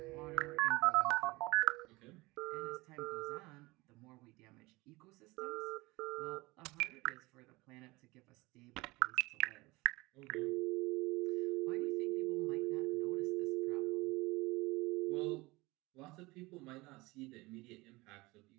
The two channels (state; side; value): quieter; left; 22.2 dB